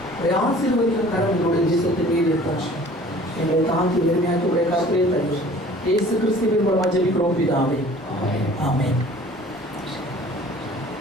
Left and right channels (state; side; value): normal; both; correlation 0.49